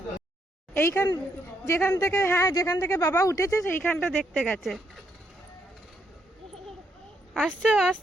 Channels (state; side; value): normal; both; correlation 0.76